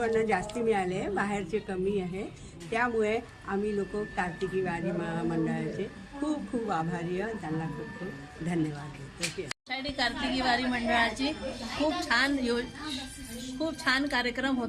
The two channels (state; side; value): identical; both; correlation 1.00